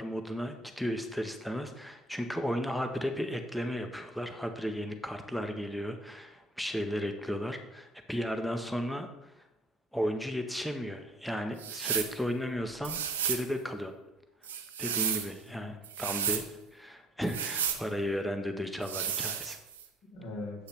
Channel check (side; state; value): both; normal; correlation 0.58